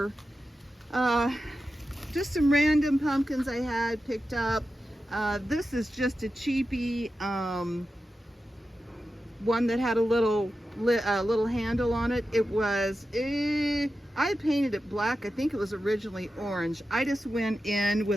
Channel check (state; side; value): normal; both; correlation 0.91